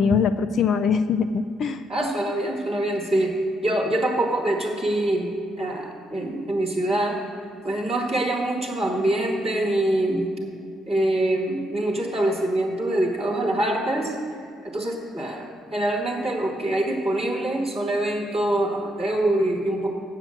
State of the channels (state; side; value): normal; both; correlation 0.77